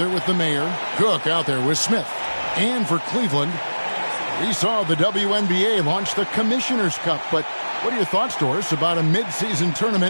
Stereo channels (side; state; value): both; inverted; correlation -1.00